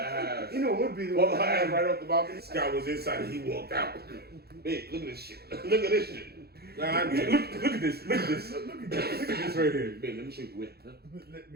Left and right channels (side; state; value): left; late; 0.46 ms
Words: You know would be the Blow one. her ass right off the balcony. This guy was inside and he walked out. Hey, look at this shit. Look at this shit. Nah, look at this. Look at this. Look at this right here. Babe, let me show you the way. Huh?